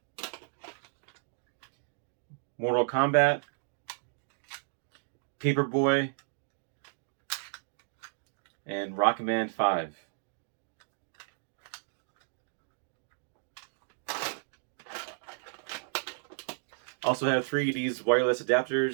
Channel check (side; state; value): left; silent; digital silence